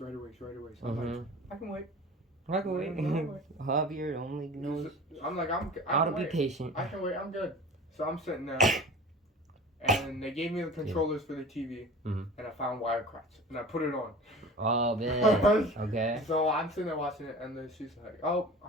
I'm like, I can wait. I can wait. Javier only knows I'm like, how to be patient. I can wait. I'm good. So I'm sitting there, and they gave me the controllers for the TV, and I found Wirecrafts, and I put it on. Oh, man. Okay. So I'm sitting there watching it, and then she's like, oh,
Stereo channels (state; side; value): normal; both; correlation 0.39